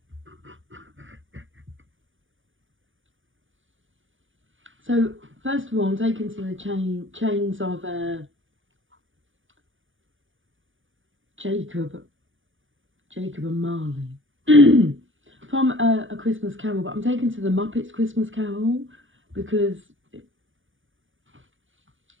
So, first of all, I'm taken to the chains of Jacob and Marley from A Christmas Carol, but I'm taken to the Muppets Christmas Carol because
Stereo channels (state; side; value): late; left; 0.57 ms